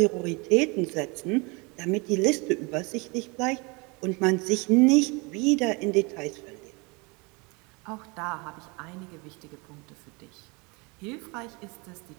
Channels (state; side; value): quieter; left; 28.5 dB